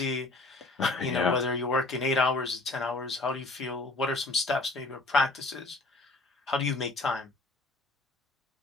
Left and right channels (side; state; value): right; quieter; 3.1 dB